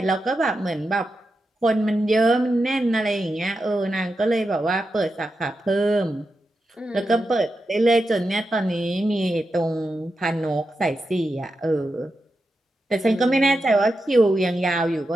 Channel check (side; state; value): both; normal; correlation 0.89